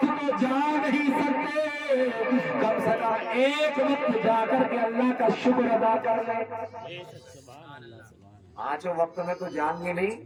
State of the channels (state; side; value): identical; both; correlation 1.00